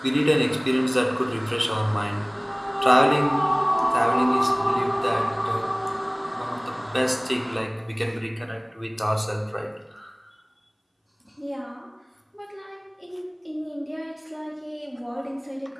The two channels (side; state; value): both; identical; correlation 1.00